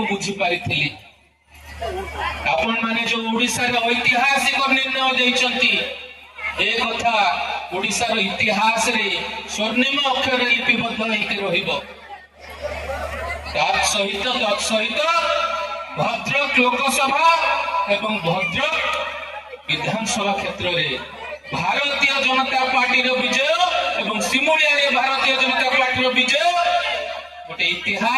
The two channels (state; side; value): identical; both; correlation 1.00